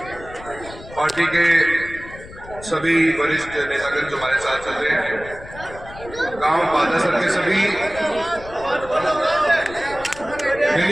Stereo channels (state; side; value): noise; left; rumble, 16 dB below the sound